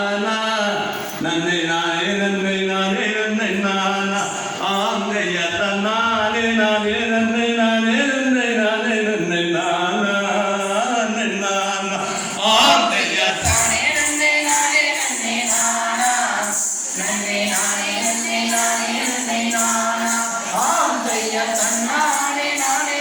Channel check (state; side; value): identical; both; correlation 1.00